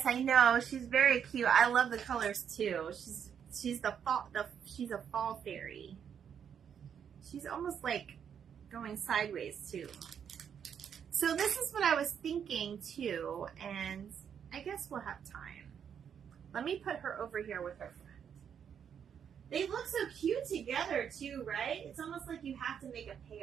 I know. She's very cute. I love the colors too. She's a fall fairy. She's almost like going sideways too. So this is what I was thinking too, and I guess we'll have time. Let me put her over here with her friend. They look so cute together too, right? It's almost like you have to make a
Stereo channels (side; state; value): left; quieter; 8.0 dB